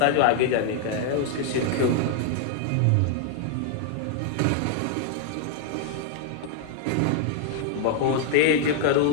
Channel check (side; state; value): both; different; correlation -0.01